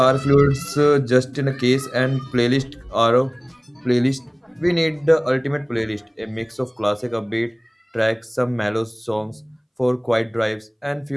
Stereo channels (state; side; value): identical; both; correlation 1.00